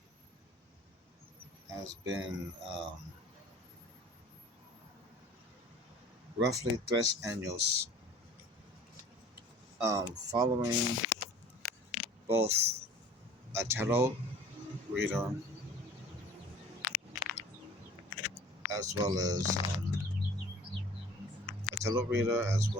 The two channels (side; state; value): both; normal; correlation 0.47